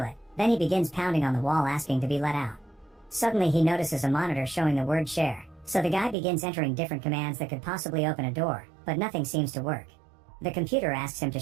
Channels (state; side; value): drops out; left; at 6.2 s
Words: Then he begins pounding on the wall asking to be let out. Suddenly he notices a monitor showing the word share, so the guy begins entering different commands that could possibly open a door, but nothing seems to work. The computer asks him to